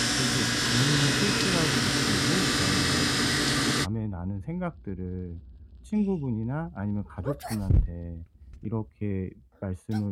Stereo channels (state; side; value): identical; both; correlation 1.00